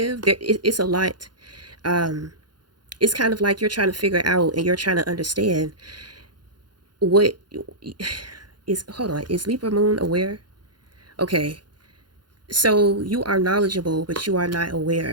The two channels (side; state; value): left; late; 0.71 ms